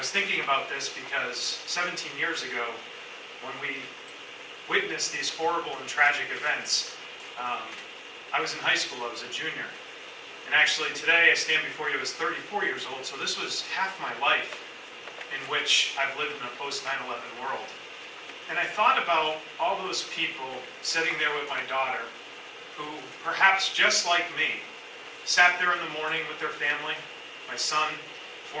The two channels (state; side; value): identical; both; correlation 1.00